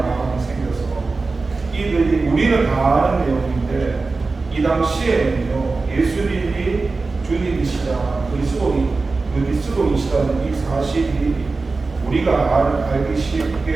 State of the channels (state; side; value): quieter; left; 3.8 dB